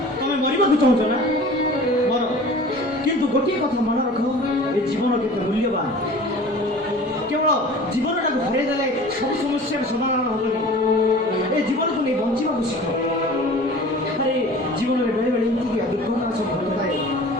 ତମେ ମରିବାକୁ ଚାହୁଁଛ ନା ମର କିନ୍ତୁ ଗୋଟିଏ କଥା ମନେ ରଖ ଏ ଜୀବନ କେତେ ମୂଲ୍ୟବାନ କେବଳ ଜୀବନଟାକୁ ଫେରାଇ ଦେଲେ ସବୁ ସମସ୍ୟାର ସମାଧାନ ହେବନି ଏ ଜୀବନକୁ ନେଇ ବଞ୍ଚିବାକୁ ଶିଖ ଆରେ ଜୀବନରେ ବେଳେ ବେଳେ ଏମିତି ଦୁର୍ଘଟଣା ସବୁ ଘଟୁଥାଏ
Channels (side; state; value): both; normal; correlation 0.42